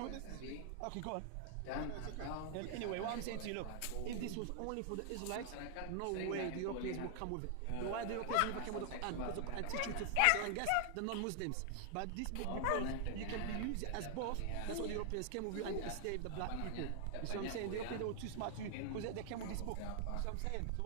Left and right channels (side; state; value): both; different; correlation 0.00